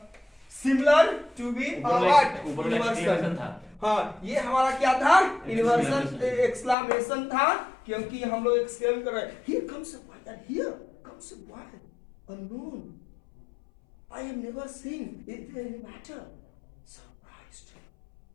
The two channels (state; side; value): drops out; right; at 6.8 s